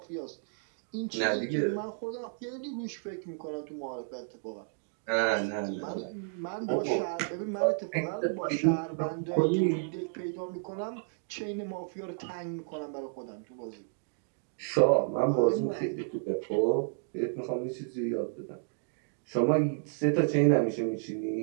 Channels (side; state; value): left; silent; digital silence